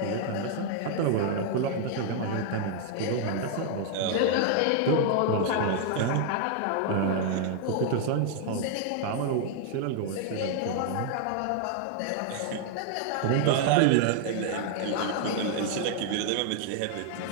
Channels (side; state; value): both; different; correlation 0.00